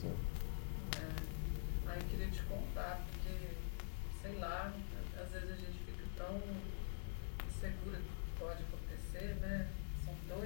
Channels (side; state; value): right; silent; digital silence